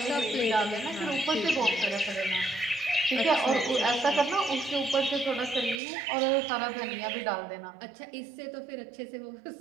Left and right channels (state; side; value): drops out; left; at 5.8 s